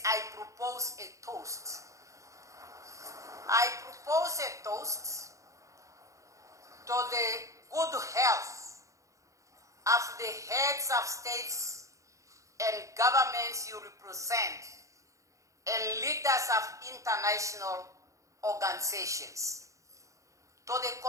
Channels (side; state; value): left; late; 0.15 ms